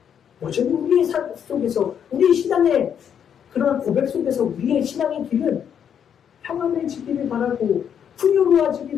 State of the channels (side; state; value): right; quieter; 8.4 dB